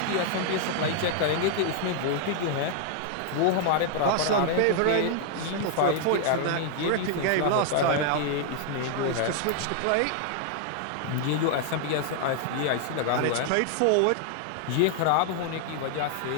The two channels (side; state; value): both; different; correlation 0.00